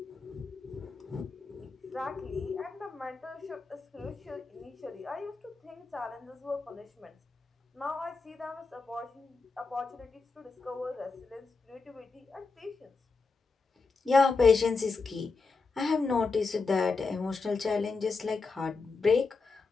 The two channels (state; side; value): quieter; right; 4.2 dB